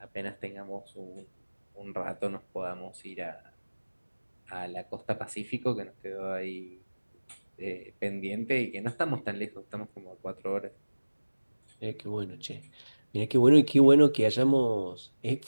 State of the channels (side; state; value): both; inverted; correlation -1.00